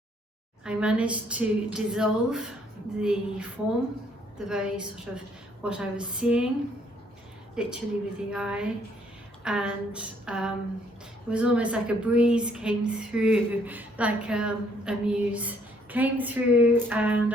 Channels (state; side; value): normal; both; correlation 0.66